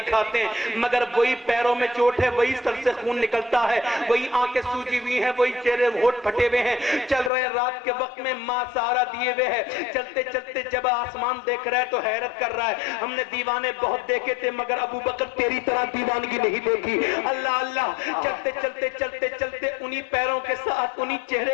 کھاتے ہیں، مگر وہی پیروں میں چوٹ ہے، وہی سر سے خون نکلتا ہے، وہی آنکھیں سوجی ہوئی ہیں، وہی چہرے ہونٹ پھٹے ہوئے ہیں، چل رہے ہیں رات کے وقت میں، ماں سہارا دیے ہوئے ہے، چلتے چلتے جب آسمان دیکھ رہا ہے تو حیرت کر رہا ہے، ہم نے دیوانے بہت دیکھے تھے مگر ابو بکر تیری طرح دیوانگی نہیں دیکھی۔ اللہ اللہ، چلتے چلتے چلتے چلتے انہی پیروں کے ساتھ، انہی چہرے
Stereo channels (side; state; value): right; drops out; at 7.3 s